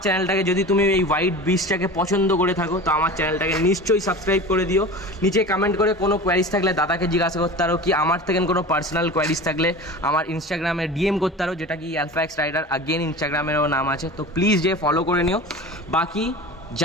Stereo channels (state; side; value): normal; both; correlation 0.34